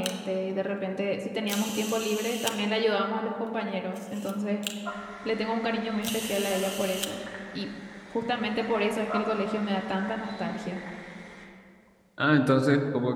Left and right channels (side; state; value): both; identical; correlation 1.00